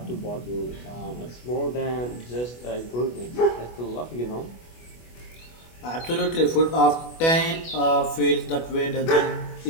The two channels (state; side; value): late; right; 25 ms